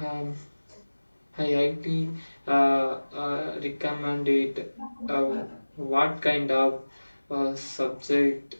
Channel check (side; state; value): both; inverted; correlation -1.00